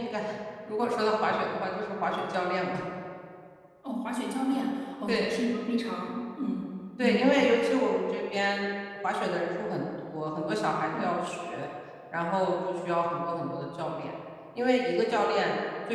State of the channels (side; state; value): both; identical; correlation 1.00